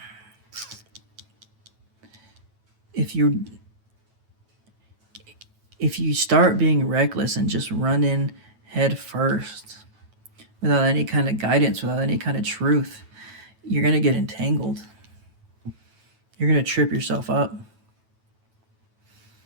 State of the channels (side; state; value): left; late; 9.1 ms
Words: If you start being reckless and just run in head first without any kind of guidance, without any kind of truth, you're going to get entangled. You're going to trip yourself up.